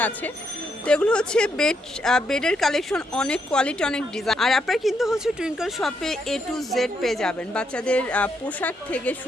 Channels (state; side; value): normal; both; correlation 0.78